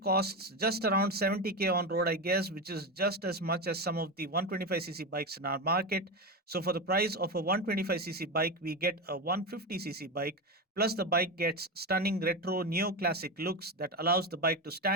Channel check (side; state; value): both; normal; correlation 0.17